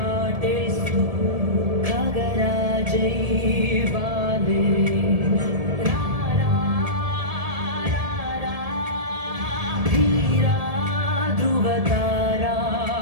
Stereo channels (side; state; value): left; late; 1.7 ms